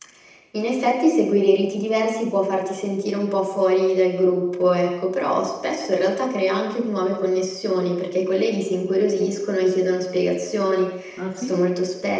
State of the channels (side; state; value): both; identical; correlation 1.00